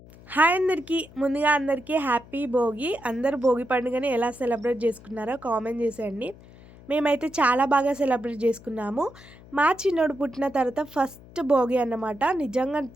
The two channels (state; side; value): noise; left; hum, 21 dB below the sound